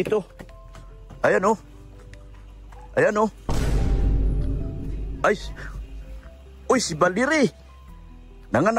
Ayan oh. Ayan oh. Ay. Uy, si Baliri.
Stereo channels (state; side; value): identical; both; correlation 1.00